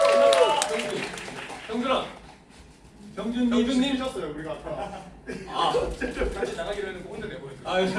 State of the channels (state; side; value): identical; both; correlation 1.00